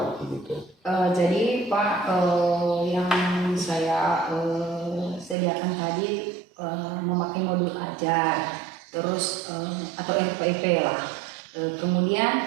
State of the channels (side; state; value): left; drops out; at 5.4 s